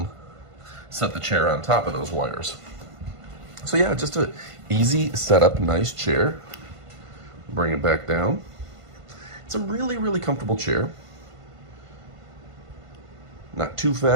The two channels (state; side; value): late; left; 1.5 ms